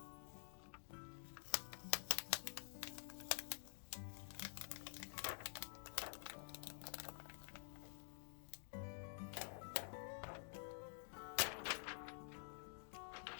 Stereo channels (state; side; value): silent; right; digital silence